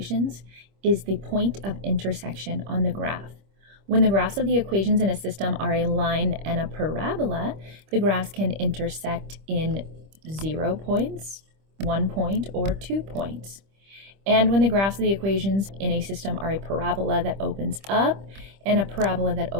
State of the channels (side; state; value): left; late; 25 ms